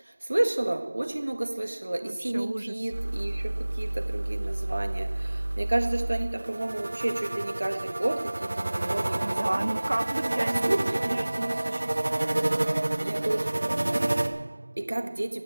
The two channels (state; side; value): inverted; both; correlation -1.00